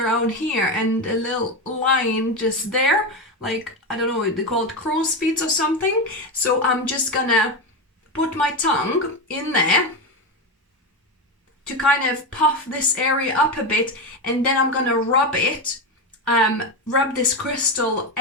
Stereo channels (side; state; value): both; normal; correlation 0.14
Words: here and a little line just there, like, I don't know, they call it crow's feet or something. So I'm just gonna put my tongue in there to kind of puff this area up a bit, and then I'm gonna rub this crystal